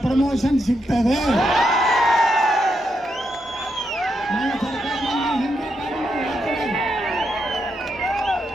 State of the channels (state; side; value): normal; both; correlation 0.82